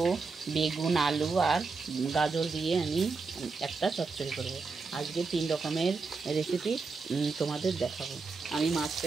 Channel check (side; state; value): left; quieter; 4.4 dB